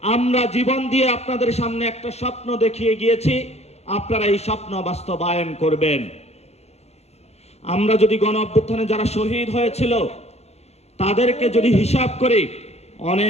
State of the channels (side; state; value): right; late; 0.31 ms